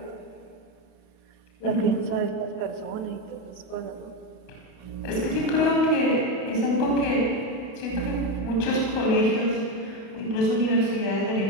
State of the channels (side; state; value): right; late; 32 ms